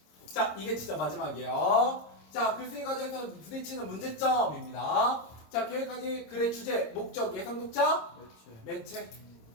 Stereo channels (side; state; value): right; late; 26 ms